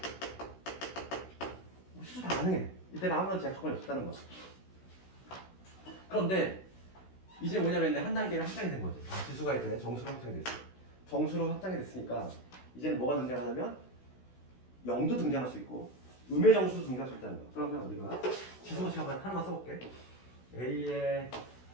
시수 다 가능해. 이때는 아무런 제약 조건이 없었다는 거야. 그런데 이제 뭐냐면 한 단계를 확장이 된 거지. 지수가 이제 정수로 확장이 됐어. 정수로 확장이 됐으니까 이제는 뭐가 등장하냐면 0도 등장할 수 있고 음의 정수도 등장할 수 있다는 거야. 그러면 우리가 지수 법칙 하나만 써볼게. A의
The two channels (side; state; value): right; late; 16 ms